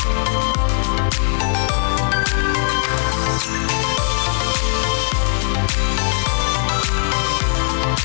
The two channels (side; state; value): right; silent; digital silence